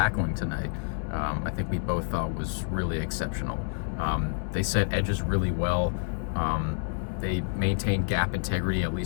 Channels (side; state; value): right; silent; 59 dB below the other